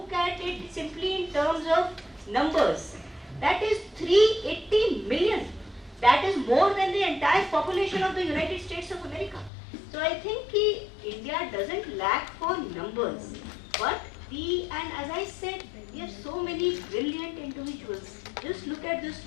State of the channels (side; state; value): right; drops out; at 9.5 s